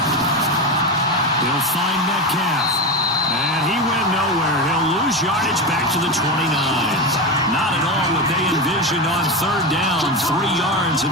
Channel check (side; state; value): both; normal; correlation 0.18